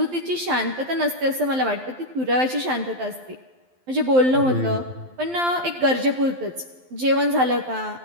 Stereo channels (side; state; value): left; late; 12 ms